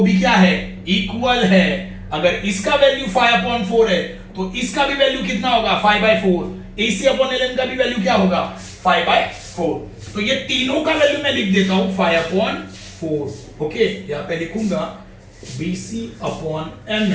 भी क्या है इक्वल है, अगर इसका वैल्यू 5/4 है तो इसका भी वैल्यू कितना होगा 5/4, A C upon L N का भी वैल्यू क्या होगा 5/4, तो ये तीनों का वैल्यू मैं लिख देता हूं 5/4। ओके, यहां पे लिखूंगा B C upon M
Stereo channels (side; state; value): both; identical; correlation 1.00